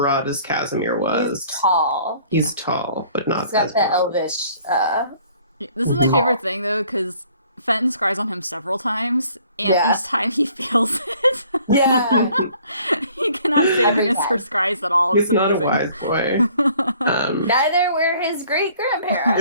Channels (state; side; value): inverted; both; correlation -0.57